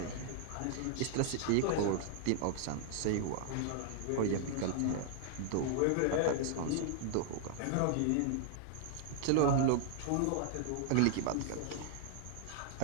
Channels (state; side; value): different; both; correlation -0.01